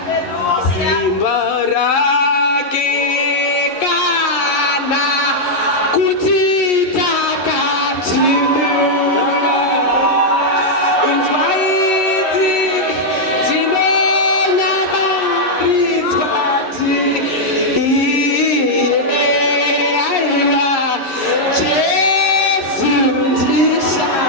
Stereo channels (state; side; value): late; right; 11 ms